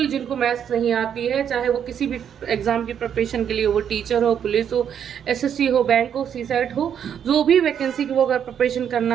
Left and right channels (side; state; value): left; quieter; 8.6 dB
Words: जिनको मैथ्स नहीं आती है, चाहे वो किसी भी एग्जाम की प्रिपरेशन के लिए, वो टीचर हो, पुलिस हो, एसएससी हो, बैंक हो, सीसेट हो, जो भी वैकेंसी की वो अगर प्रिपरेशन